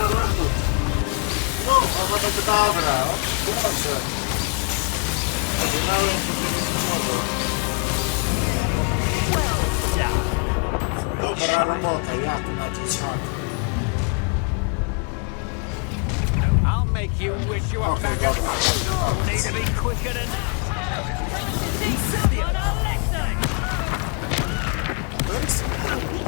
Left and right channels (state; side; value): quieter; right; 37.7 dB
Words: I'll make you wish you were back at home. Need to be quicker than that.